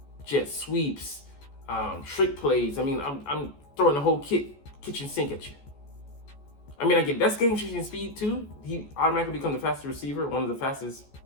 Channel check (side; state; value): right; late; 14 ms